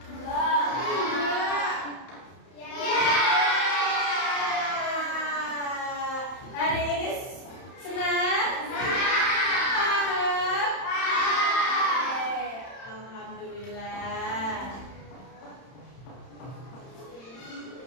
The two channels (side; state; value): right; late; 31 ms